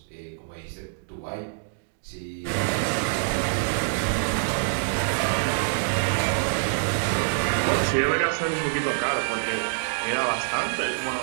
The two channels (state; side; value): silent; left; digital silence